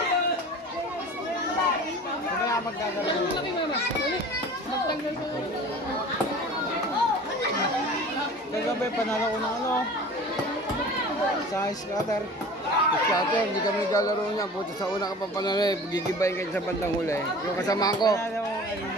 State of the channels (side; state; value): both; normal; correlation 0.41